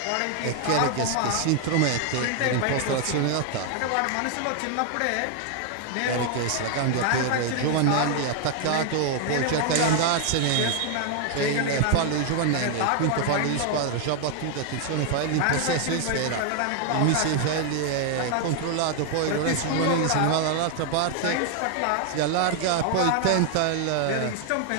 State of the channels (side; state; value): both; different; correlation 0.00